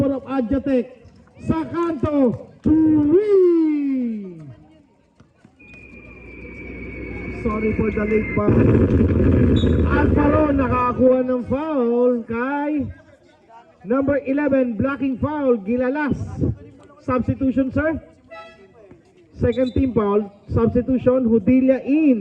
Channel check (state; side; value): identical; both; correlation 1.00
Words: of Adjatec. Sa kanto, 3. Sorry for the late pass. Alvaro nakakuha ng foul kay Number 11, blocking foul, Gilalas. Substitution, sir? Second team foul, substitution, Hudilia